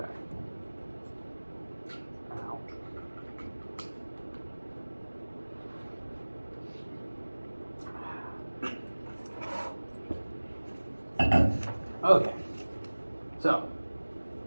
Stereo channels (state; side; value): inverted; both; correlation -1.00